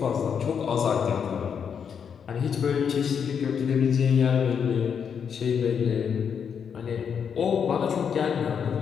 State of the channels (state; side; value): quieter; right; 7.2 dB